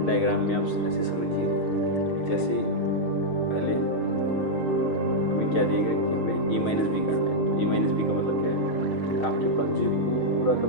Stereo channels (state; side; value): late; right; 6.5 ms